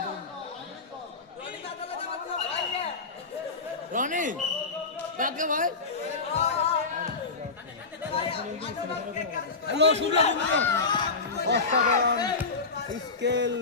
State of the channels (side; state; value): right; quieter; 4.2 dB